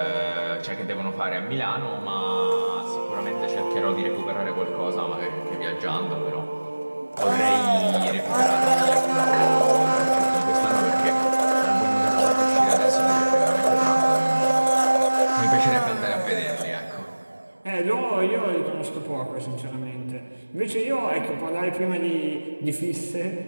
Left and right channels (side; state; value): both; inverted; correlation -1.00